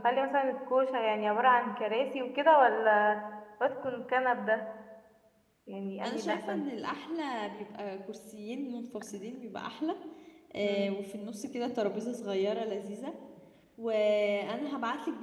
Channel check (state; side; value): identical; both; correlation 1.00